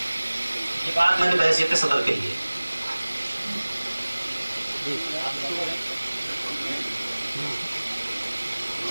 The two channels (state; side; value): inverted; both; correlation -1.00